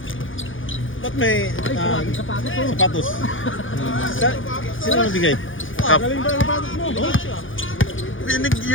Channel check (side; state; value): right; late; 0.57 ms